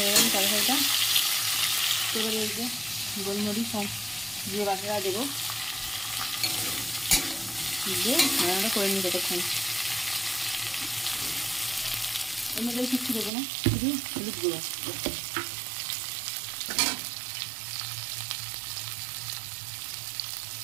গেল তরকারিটা। এবারে এই যে গোলমরিচ আর জিরে বাটাটা দেবো, দিয়ে রান্নাটা করে নিই ততক্ষণ। এর মধ্যে কিচ্ছু দেবো না, শুধু হলুদ গুঁড়ো।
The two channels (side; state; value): left; drops out; at 13.3 s